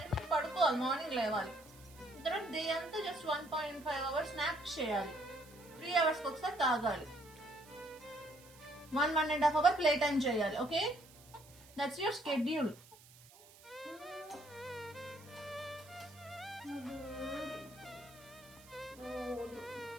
పడుకోవాలి, మార్నింగ్ లేవాలి. తర్వాత డే అంతా జస్ట్ 1.5 అవర్స్ స్నాప్ చేయాలి, 3 అవర్స్కి ఒకసారి తాగాలి, 1.5 అవర్ ప్లే టైం చేయాలి. Okay, that's your schedule.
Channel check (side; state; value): right; noise; hiss, 23 dB below the sound